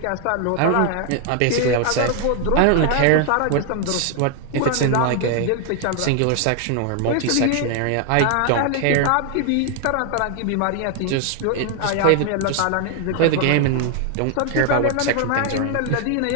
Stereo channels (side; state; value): both; different; correlation 0.00